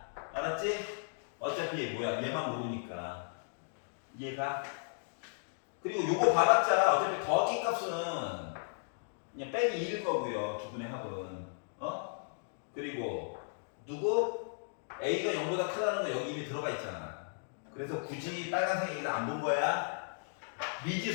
알았지? 어차피 뭐야 얘만 모르니까. 이해가? 그리고 요거 봐봤자 어차피 더하기 값은 그냥 빼기 2일 거고요. 두 분의 합은. 그리고 누구? A가 0보다 크다는 거 여기 이미 들어가 있잖아. 그래서 굳이 빨간색 얘기를 안 본 거야.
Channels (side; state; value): right; silent; digital silence